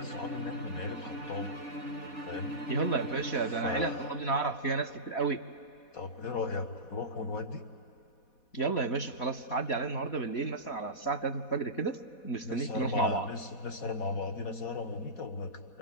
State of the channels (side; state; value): right; late; 4.1 ms